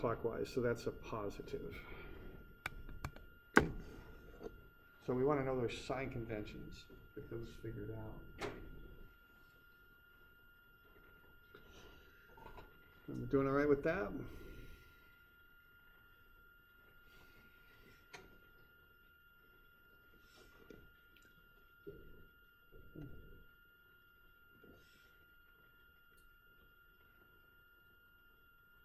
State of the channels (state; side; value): identical; both; correlation 1.00